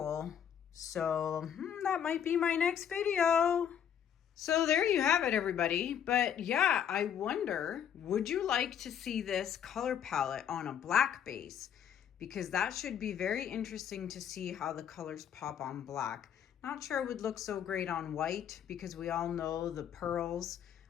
So that might be my next video. So there you have it, everybody. But yeah, I wonder, would you like to see this color palette on a black base? Because that should be very interesting to see how the colors pop on black. Not sure it would look so great on white because we all know the pearls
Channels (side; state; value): right; quieter; 8.9 dB